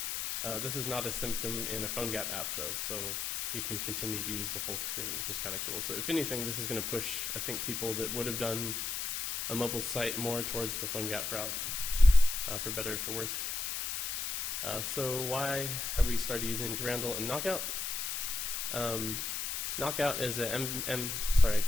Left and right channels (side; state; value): left; noise; hiss, 2 dB below the sound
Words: This is not a symptom in a PhoneGap app, though, so you can continue to use the whole screen, which is kind of cool. So if anything, this is going to push, I think, people that would have done a mobile site more towards the PhoneGap route, for better or for worse. So why have we started using Durandal and Knockout? Knockout is an